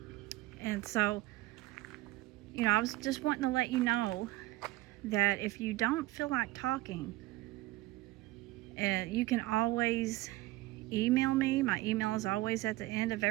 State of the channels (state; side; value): quieter; left; 18.3 dB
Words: And so I was just wanting to let you know that if you don't feel like talking, you can always email me. My email is always at the end of